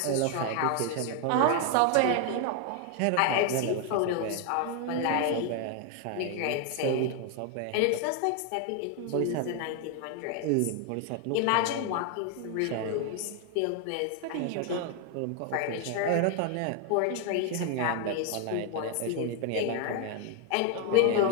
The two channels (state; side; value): different; both; correlation 0.01